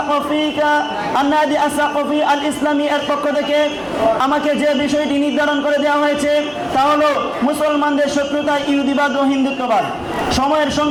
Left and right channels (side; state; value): both; identical; correlation 1.00